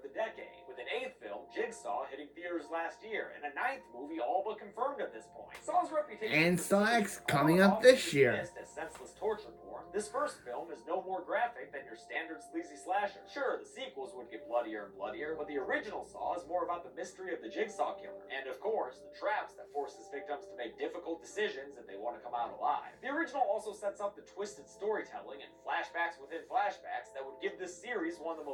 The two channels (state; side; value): identical; both; correlation 1.00